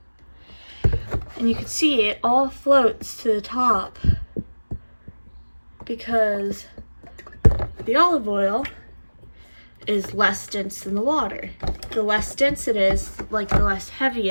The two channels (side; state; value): both; inverted; correlation -1.00